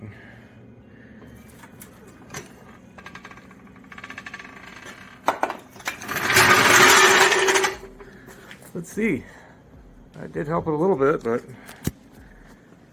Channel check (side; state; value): both; identical; correlation 1.00